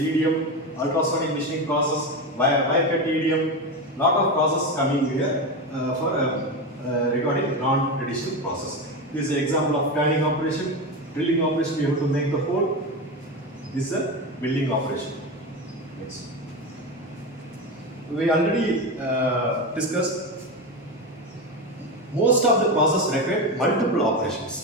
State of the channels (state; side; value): normal; both; correlation 0.18